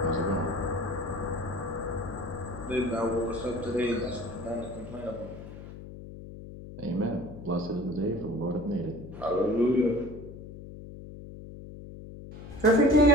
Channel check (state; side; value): noise; left; hum, 13 dB below the sound